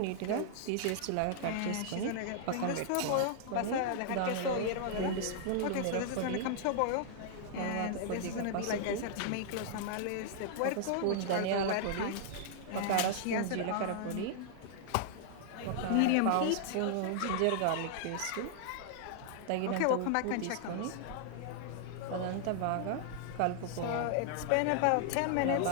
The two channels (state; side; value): different; both; correlation -0.01